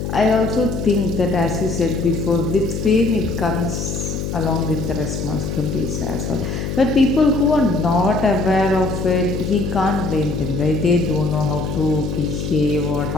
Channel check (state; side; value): noise; left; hum, 4 dB below the sound